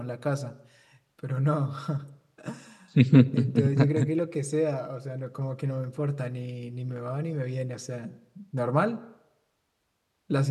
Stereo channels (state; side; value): identical; both; correlation 1.00